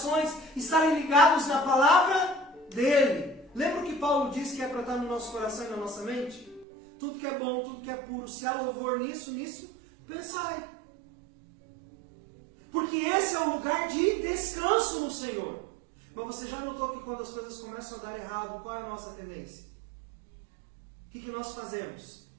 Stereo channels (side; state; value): left; drops out; at 6.7 s